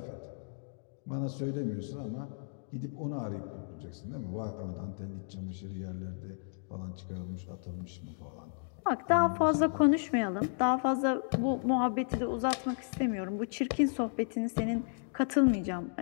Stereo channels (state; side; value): silent; right; digital silence